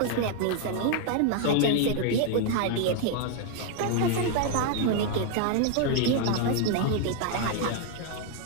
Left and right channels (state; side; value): different; both; correlation 0.00